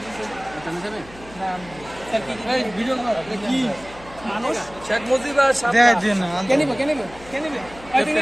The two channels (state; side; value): noise; left; hum, 20 dB below the sound